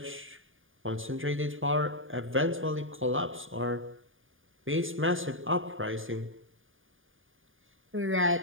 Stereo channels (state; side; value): late; left; 0.58 ms